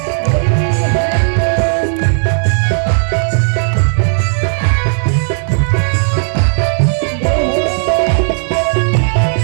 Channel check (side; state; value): left; silent; digital silence